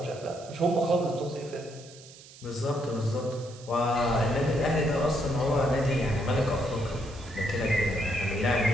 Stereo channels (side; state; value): right; noise; hiss, 20 dB below the sound